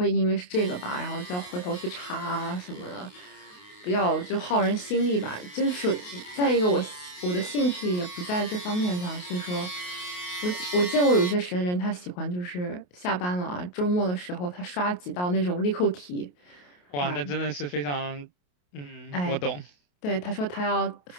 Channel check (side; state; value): right; late; 28 ms